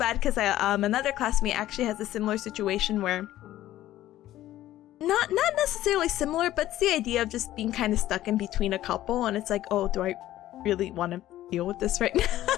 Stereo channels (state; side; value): quieter; right; 14.1 dB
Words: because another classmate actually has a similar situation where not necessarily similar, but it's the idea of just being kind of stuck in between a couple, and it's like, oh, do I really want to deal with this right now?